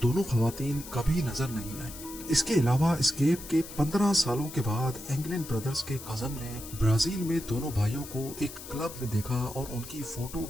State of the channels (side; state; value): left; noise; hiss, 13 dB below the sound